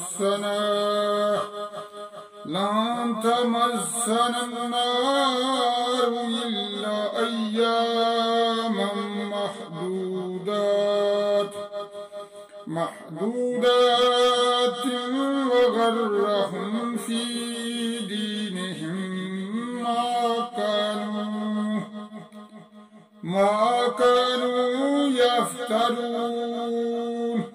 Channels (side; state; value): both; identical; correlation 1.00